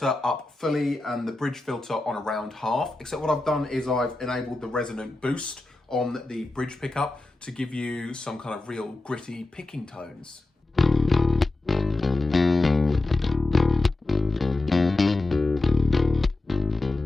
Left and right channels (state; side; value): quieter; right; 3.0 dB